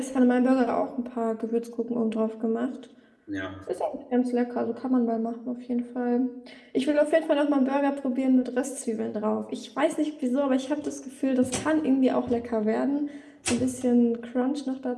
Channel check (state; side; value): identical; both; correlation 1.00